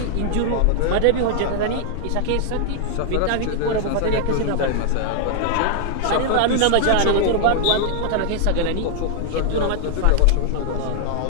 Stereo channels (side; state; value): both; different; correlation 0.00